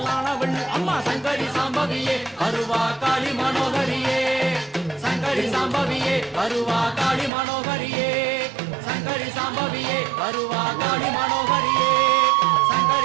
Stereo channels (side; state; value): left; drops out; at 7.3 s